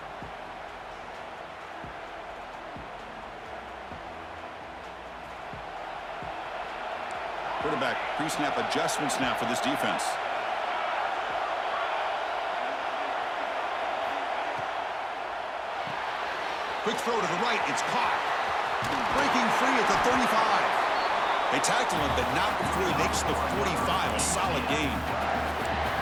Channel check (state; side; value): identical; both; correlation 1.00